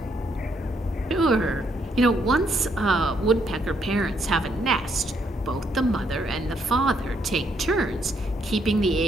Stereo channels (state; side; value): normal; both; correlation 0.73